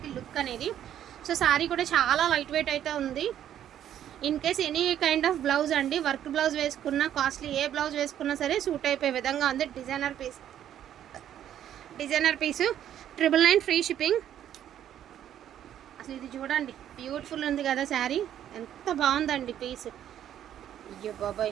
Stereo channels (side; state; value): left; quieter; 10.7 dB